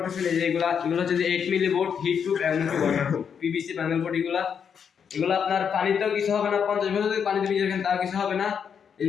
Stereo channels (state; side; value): quieter; right; 7.3 dB